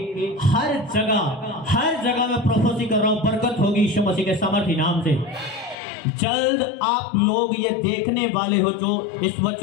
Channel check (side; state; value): right; drops out; at 5.8 s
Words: हर जगह में प्रोफेसी कर रहा हूं, बरकत होगी यीशु मसीह के सामर्थी नाम से। जल्द आप लोग ये देखने वाले हो, जो इस